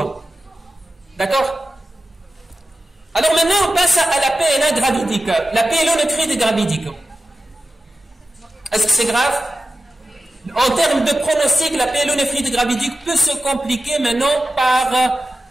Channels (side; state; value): both; normal; correlation 0.93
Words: D'accord? Alors maintenant, on passe à la PNA gravidique, la pyélonéphrite gravidique. Est-ce que c'est grave? En termes de pronostic, la pyélonéphrite gravidique peut se compliquer maintenant par